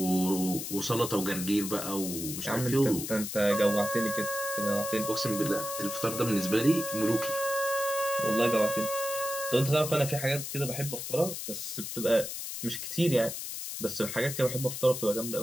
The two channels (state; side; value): noise; left; hiss, 6 dB below the sound